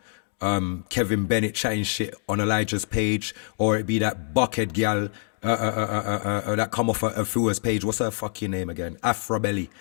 Kevin Bennett chatting shit on Elijah's page, or it be that bucket gal that come off a Fua's page. What's her fucking name again? Afro Belly,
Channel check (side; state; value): right; silent; 60 dB below the other